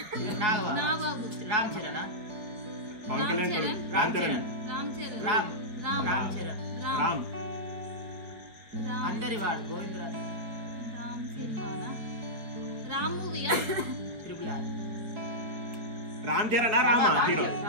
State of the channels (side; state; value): left; late; 4.9 ms